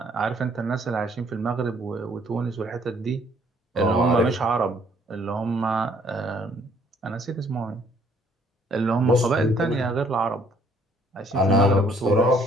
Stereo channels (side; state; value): both; normal; correlation 0.63